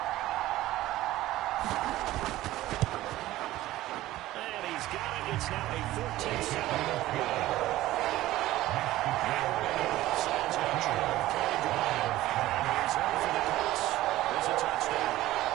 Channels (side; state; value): left; quieter; 15.9 dB